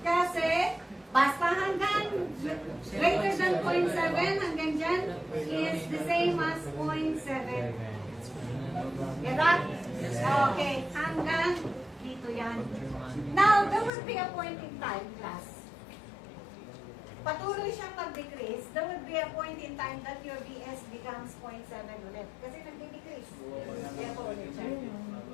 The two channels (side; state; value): right; drops out; at 13.9 s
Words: Kasi, basta hanggang greater than 0.7, hanggang dyan, is the same as 0.7. Get that? Okay. Hanggang dito yan. Now, there will be a point in time, class. Patuloy siyang mag-decrease, there will be a point in time that your VS becomes 0.7 ulit. Kasi nag-decrease. Kaya po ulit siya.